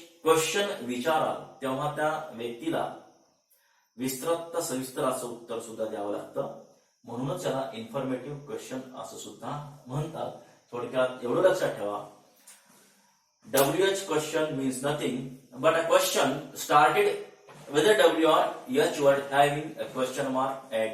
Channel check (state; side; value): identical; both; correlation 1.00